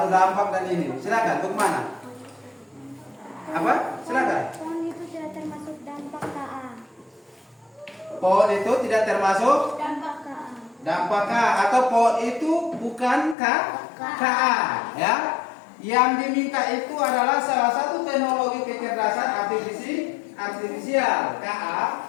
dampak dan ini. Silakan, bagaimana? Apa? Silakan. Pohon itu tidak termasuk dampak KA. Pohon itu tidak termasuk Dampak KA. dampak K, atau pohon itu bukan KA ya. Yang diminta itu adalah salah satu teknologi kecerdasan artifisial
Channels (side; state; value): right; drops out; at 13.4 s